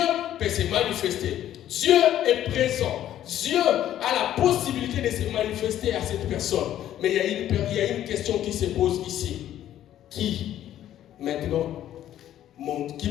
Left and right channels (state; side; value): quieter; right; 11.9 dB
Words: peut se manifester. Dieu est présent. Dieu a la possibilité de se manifester à cette personne. Mais il y a une question qui se pose ici. Qui, maintenant, qui